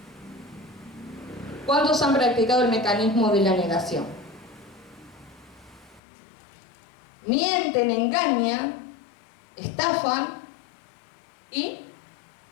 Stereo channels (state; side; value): drops out; right; at 6.0 s